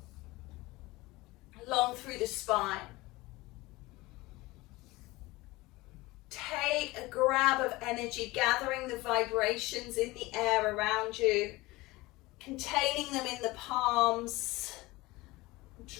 Long through the spine. Take a grab of energy, gathering the vibrations in the air around you, containing them in the palms,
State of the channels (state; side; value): quieter; right; 20.7 dB